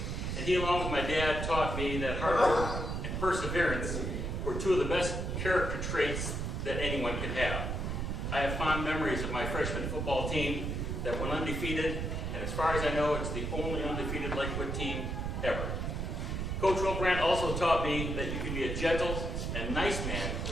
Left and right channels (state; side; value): noise; right; rumble, 2 dB below the sound